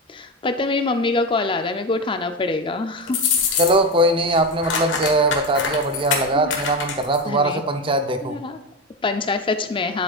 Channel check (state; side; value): normal; both; correlation 0.16